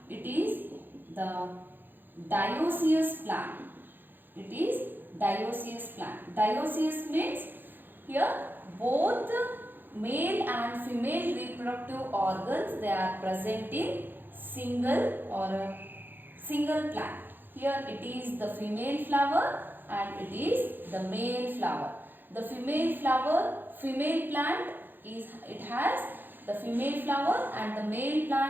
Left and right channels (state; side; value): late; left; 0.093 ms